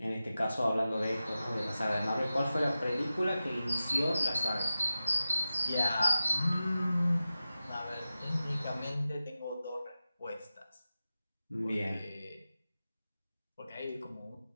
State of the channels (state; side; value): inverted; both; correlation -0.94